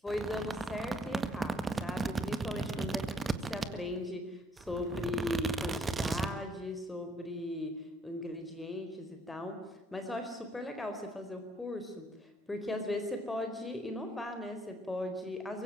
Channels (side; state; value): both; normal; correlation 0.65